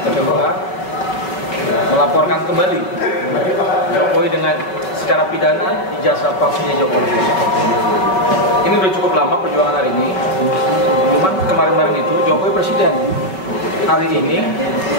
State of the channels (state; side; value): late; right; 5.3 ms